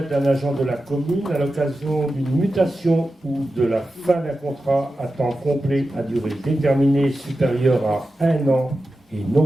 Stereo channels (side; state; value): both; normal; correlation 0.92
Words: d'un agent de la commune, à l'occasion d'une mutation ou de la fin d'un contrat à temps complet à durée déterminée supérieure à 1 an et non